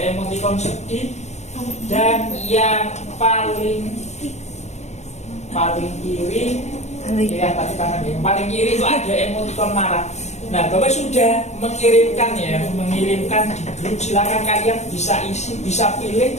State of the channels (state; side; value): late; right; 0.33 ms